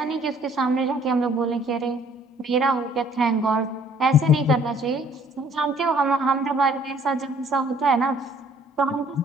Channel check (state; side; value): normal; both; correlation 0.59